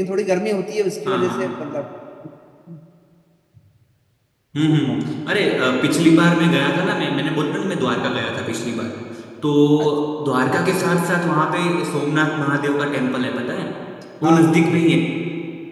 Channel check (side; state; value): both; identical; correlation 1.00